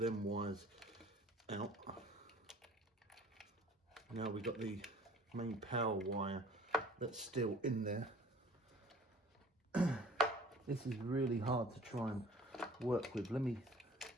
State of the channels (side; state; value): both; normal; correlation 0.49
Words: wires out. Now we've got the main power wire that's still in there. This is really hard to try and work with.